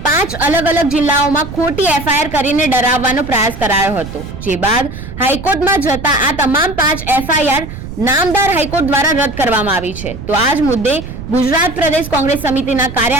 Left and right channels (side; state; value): right; noise; rumble, 10 dB below the sound